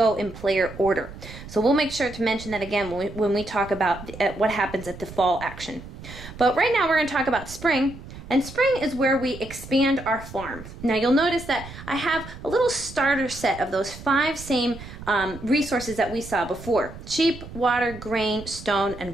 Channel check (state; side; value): noise; right; rumble, 14 dB below the sound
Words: in player order. So we'll make sure to mention that again when we talk about what happens at the fall action. But right now we're going to talk about spring. And spring is where we expand our farm. Now you'll notice that I have a little starter set of those 5 same resources that we saw before: sheep, water, grain, stone, and